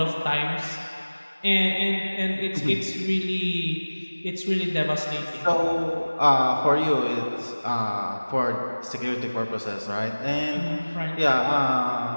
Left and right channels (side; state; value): both; inverted; correlation -1.00